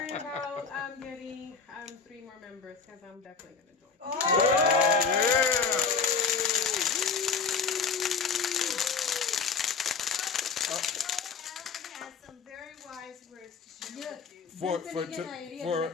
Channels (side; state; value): right; quieter; 5.4 dB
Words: about getting 3 more members because I'm definitely going to join. Has some very wise words to share with you.